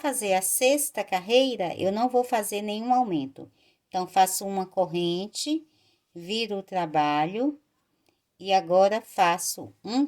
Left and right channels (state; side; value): identical; both; correlation 1.00